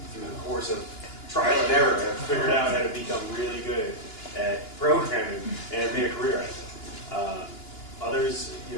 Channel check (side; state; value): right; late; 2.9 ms